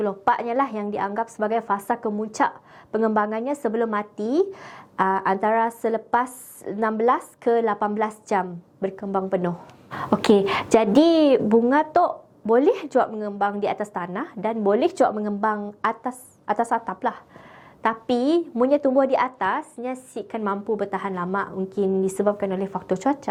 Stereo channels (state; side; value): identical; both; correlation 1.00